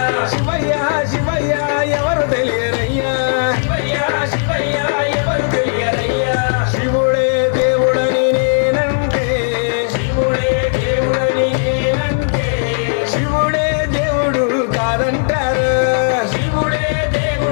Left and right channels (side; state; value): right; silent; digital silence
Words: శివయ్య శివయ్య ఎవరు తెలియరయ్యా శివయ్య శివయ్య ఎవరు తెలియరయ్యా శివుడే దేవుడని నేనంటే శివుడే దేవుడని నేనంటే శివుడే దేవుడు కాదంటారు శివుడే